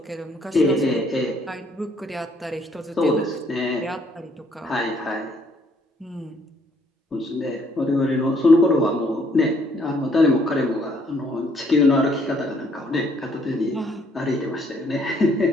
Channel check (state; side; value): normal; both; correlation 0.66